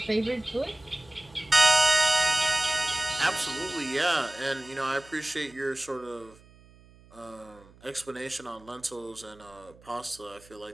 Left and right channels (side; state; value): right; noise; hum, 25 dB below the sound